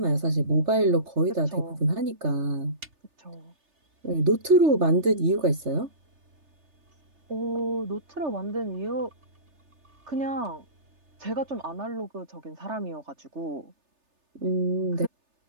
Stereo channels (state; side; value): late; left; 3.3 ms